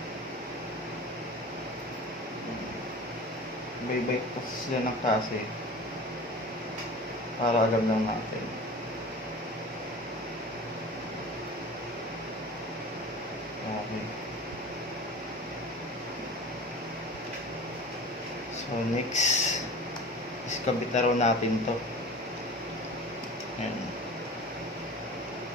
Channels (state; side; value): normal; both; correlation 0.37